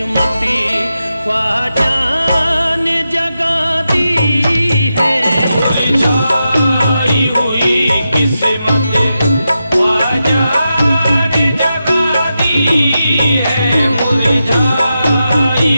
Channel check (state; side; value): inverted; both; correlation -0.88